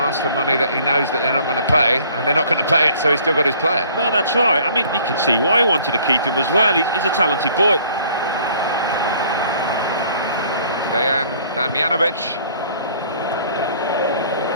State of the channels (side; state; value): both; inverted; correlation -0.55